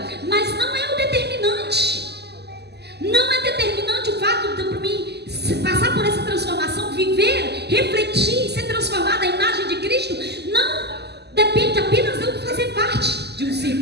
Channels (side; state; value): left; late; 0.49 ms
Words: mas não é o determinante. Não é determinante o fato de mim passar por essa transformação, viver, refletir, ser transformada à imagem de Cristo. Não depende apenas de eu fazer parte de um